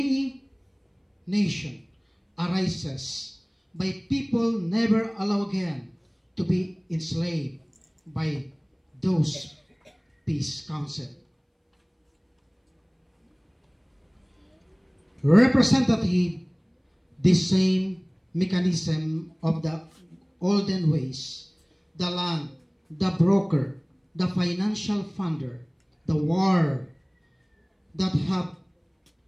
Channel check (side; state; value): both; identical; correlation 1.00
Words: nations arises by people never allowed again to be enslaved by those peace council. Representative the same mechanism of the olden ways, the land, the broker, the financial funder, the war that have